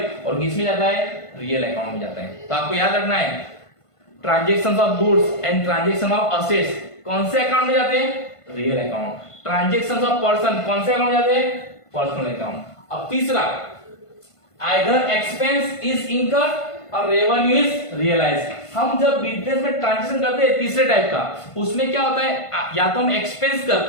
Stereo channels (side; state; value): right; late; 1.5 ms